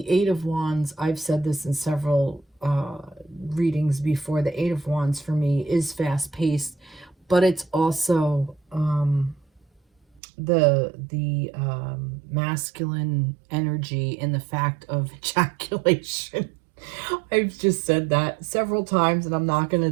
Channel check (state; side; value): drops out; left; at 10.2 s